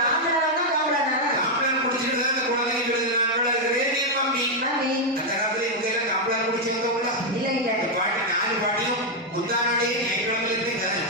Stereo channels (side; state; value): both; normal; correlation 0.00